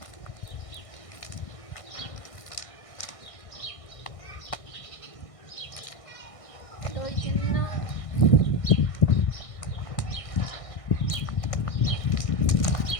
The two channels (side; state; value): right; late; 1.6 ms